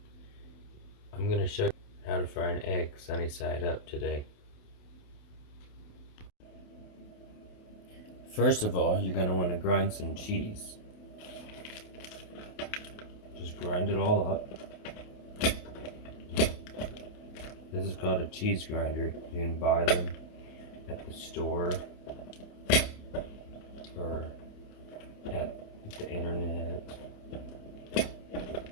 I'm going to show you how to fry an egg sunny side up today. First of all, you're going to want to grind some cheese. Just grind it all up. This is called a cheese grinder. You can buy them at the store or at the internet.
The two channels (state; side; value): late; right; 28 ms